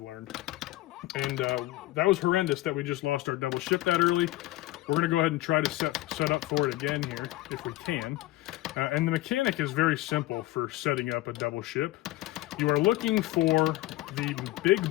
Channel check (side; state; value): right; quieter; 17.2 dB